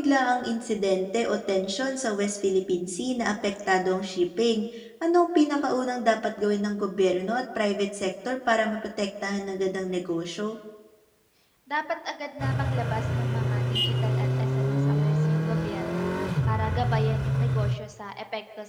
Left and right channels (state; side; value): identical; both; correlation 1.00